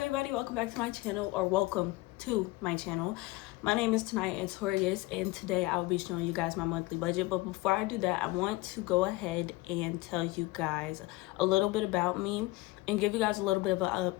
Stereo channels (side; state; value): right; quieter; 21.0 dB